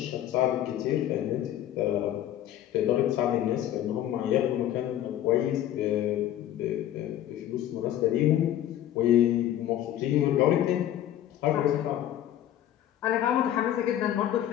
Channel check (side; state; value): right; quieter; 12.0 dB